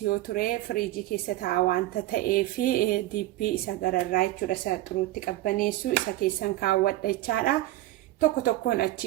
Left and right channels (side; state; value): left; quieter; 16.3 dB